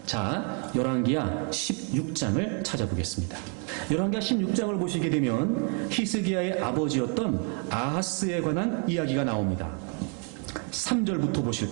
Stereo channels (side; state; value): left; quieter; 39.9 dB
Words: 자, 열왕기하 16장을 찾아보겠습니다. 열왕기하 16장을 보시게 되면 히스기야의 아버지였던 아하스에 관한 이야기가 나옵니다. 3절부터